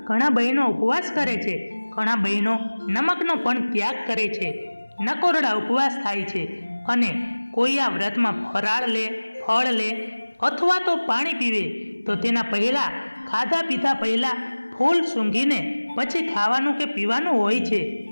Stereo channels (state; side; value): inverted; both; correlation -1.00